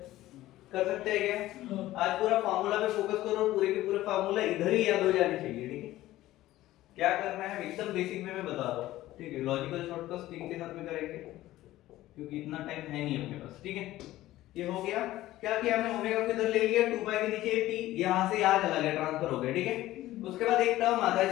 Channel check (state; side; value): quieter; right; 15.6 dB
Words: कर सकते हैं क्या? आज पूरा फार्मूला पे फोकस करो, पूरे के पूरे फार्मूला इधर ही याद हो जाने चाहिए, ठीक है। क्या करना है एकदम बेसिक में मैं बता रहा हूं, ठीक है। लॉजिकल शॉर्टकट्स इनके साथ में करेंगे क्योंकि इतना टाइम है नहीं अपने पास, ठीक है। ये हो गया। क्या किया हमने? ओमेगा को इधर ले लिया, 2 पाई के नीचे t, यहां से यहां चला गया, ट्रांसफर हो गया, ठीक है। उसके बाद एक टर्म आता है